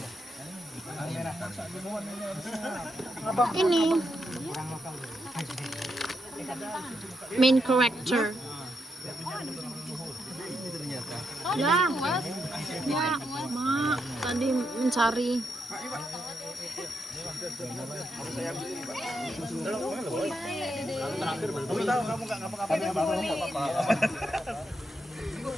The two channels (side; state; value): both; normal; correlation 0.82